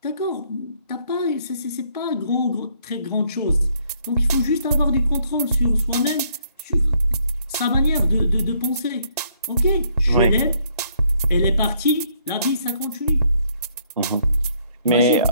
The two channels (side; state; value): both; inverted; correlation -0.68